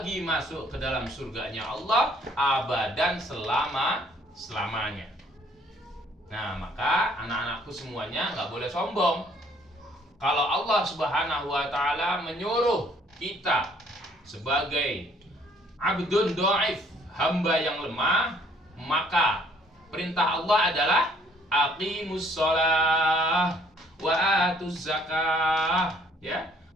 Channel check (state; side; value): normal; both; correlation 0.61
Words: masuk ke dalam surganya Allah abadan, selamanya. Nah, maka anak-anakku semuanya nggak boleh sombong. Kalau Allah Subhanahu wa taala menyuruh kita sebagai abdun dhaif, hamba yang lemah, maka perintah Allah adalah aqimus shalah wa atuz zakah, ya.